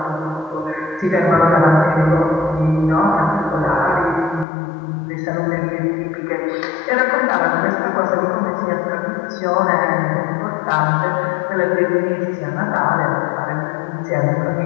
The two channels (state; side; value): drops out; right; at 4.5 s